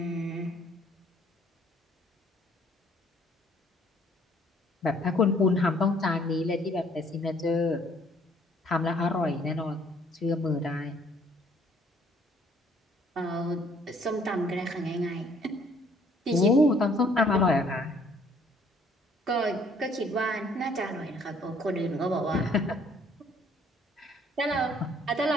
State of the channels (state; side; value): normal; both; correlation 0.61